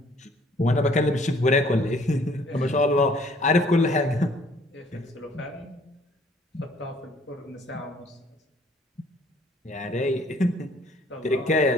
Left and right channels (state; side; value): normal; both; correlation 0.59